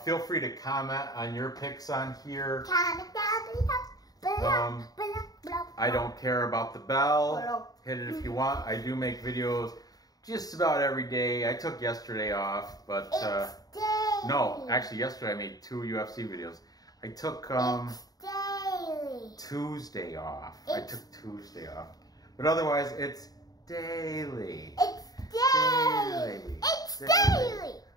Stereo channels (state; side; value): late; right; 0.18 ms